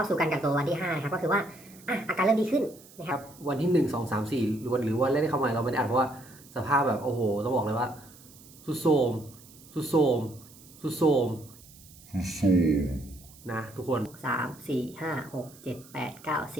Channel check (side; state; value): right; noise; hiss, 22 dB below the sound